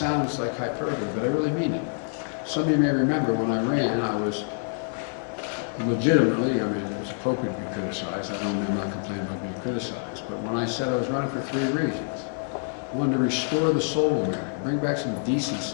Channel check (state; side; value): silent; right; digital silence